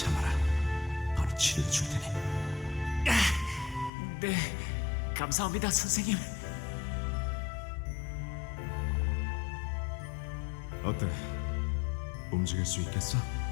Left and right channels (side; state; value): right; drops out; at 3.9 s